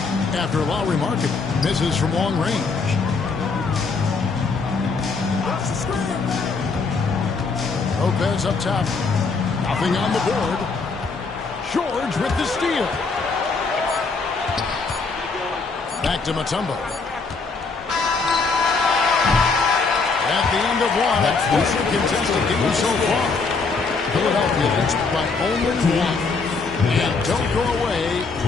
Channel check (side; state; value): right; quieter; 4.4 dB